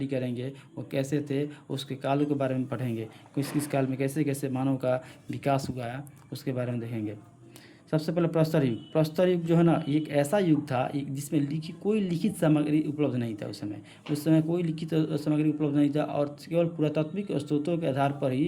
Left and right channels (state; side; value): identical; both; correlation 1.00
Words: करेंगे। वो कैसे थे, उसके कालों के बारे में पढ़ेंगे, किस काल में कैसे कैसे मानव का विकास हुआ है, उसके बारे में देखेंगे। सबसे पहले प्रस्तर युग जो है ना, एक ऐसा युग था जिसमें कोई लिखित सामग्री उपलब्ध नहीं था। उस समय कोई लिखित सामग्री उपलब्ध नहीं था, और केवल पुरातात्विक स्रोतों के आधार पर